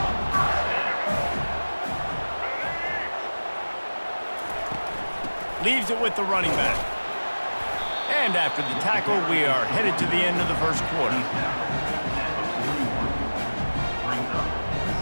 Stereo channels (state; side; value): inverted; both; correlation -1.00